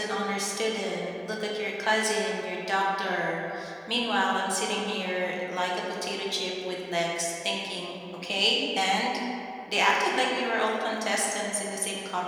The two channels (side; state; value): both; identical; correlation 1.00